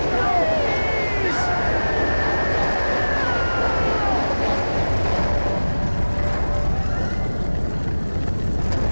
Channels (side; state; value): both; inverted; correlation -1.00